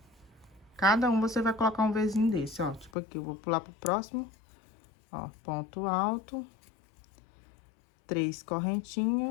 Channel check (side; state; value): right; drops out; at 2.9 s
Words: Cada um você vai colocar um Vzinho desse, ó. Tipo aqui, eu vou pular pro próximo, ó, ponto alto, 3